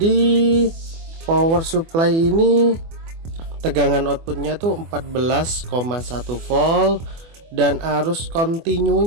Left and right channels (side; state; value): left; late; 24 ms